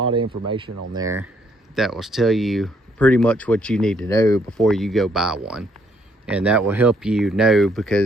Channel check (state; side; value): normal; both; correlation 0.69